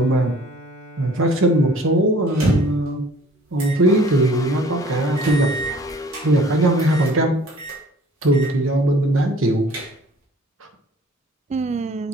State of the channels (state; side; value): normal; both; correlation 0.53